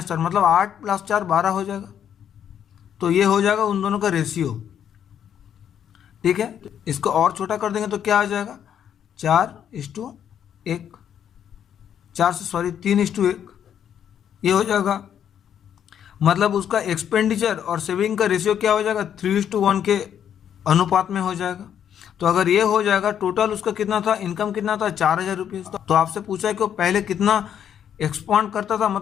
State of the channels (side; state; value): right; quieter; 9.2 dB